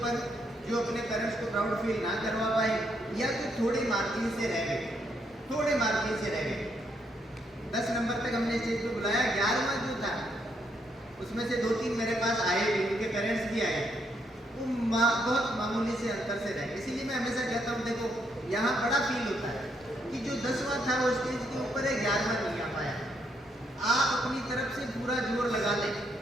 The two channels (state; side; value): normal; both; correlation 0.75